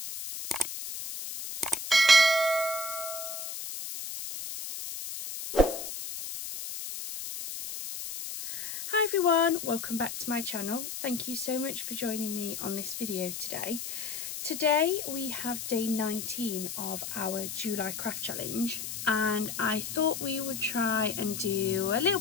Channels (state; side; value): noise; left; hiss, 7 dB below the sound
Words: Hi everyone, welcome back to my channel. Thank you so much for joining me on this video today. Today we have day 19 of our July craft challenge, and I thought we would try and do a little